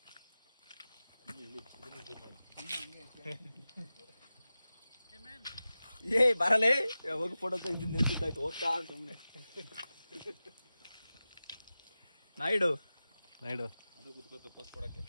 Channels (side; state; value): both; inverted; correlation -0.95